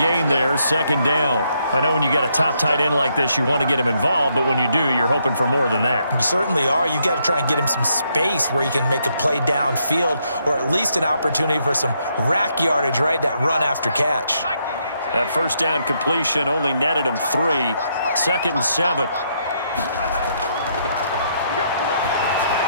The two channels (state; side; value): inverted; both; correlation -0.75